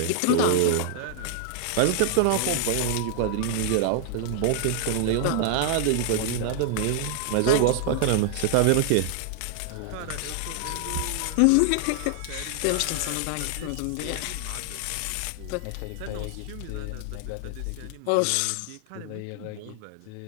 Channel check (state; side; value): different; both; correlation 0.00